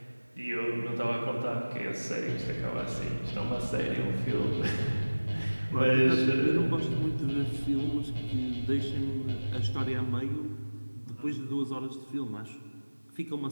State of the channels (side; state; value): both; inverted; correlation -1.00